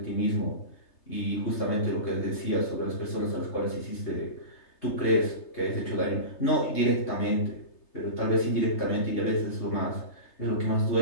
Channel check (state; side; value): late; right; 3.3 ms